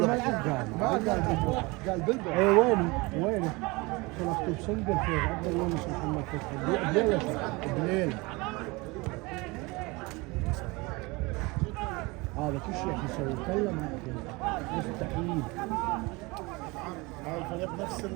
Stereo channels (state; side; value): quieter; left; 24.8 dB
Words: قال بلبل اي وينه كان مكتوب سنجل في عبد الله مش محمد فتحي بليل هذا كل شيء يسوي كلم مستحيل. هذا الفريق نفس